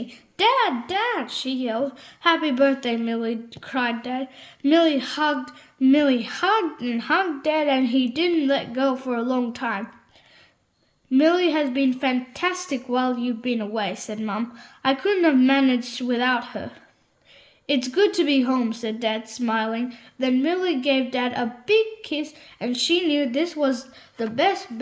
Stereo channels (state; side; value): identical; both; correlation 1.00